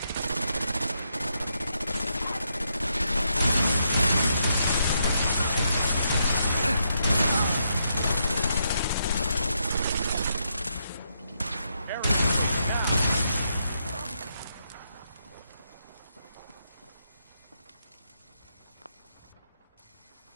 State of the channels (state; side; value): inverted; both; correlation -0.80